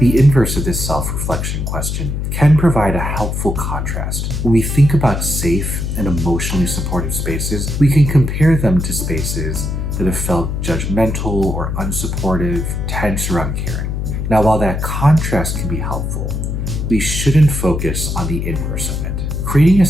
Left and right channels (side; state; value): left; noise; hum, 2 dB below the sound